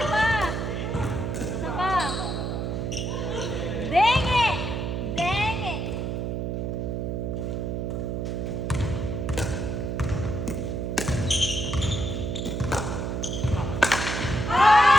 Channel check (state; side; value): noise; right; hum, 2 dB below the sound